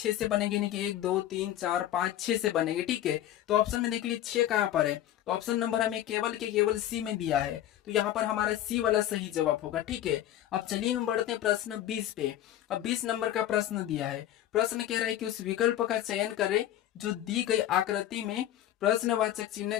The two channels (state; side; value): quieter; right; 12.5 dB